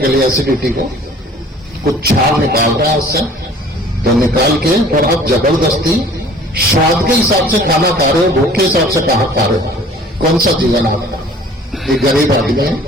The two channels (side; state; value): both; normal; correlation 0.50